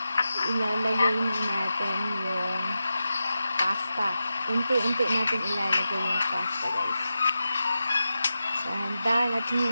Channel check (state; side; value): inverted; both; correlation -0.92